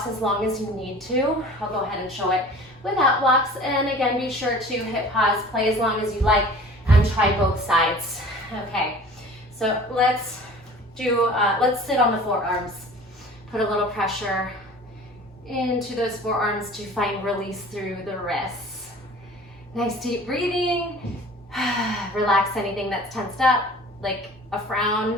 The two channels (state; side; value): normal; both; correlation 0.44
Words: as long as you need to. I'll go ahead and show it without blocks. And again, be sure to hit pause, play as long as you like, and try both sides. Okay, so let's sit on the forearms. Put a little pressure into those forearms to find release through the wrists. Nice deep breathing. Relax anything that's tensed up, like a